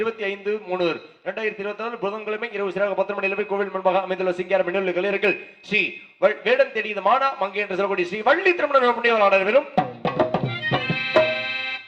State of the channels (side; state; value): both; identical; correlation 1.00